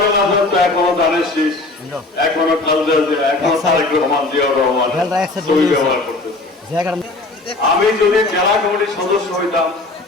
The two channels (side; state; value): right; quieter; 3.1 dB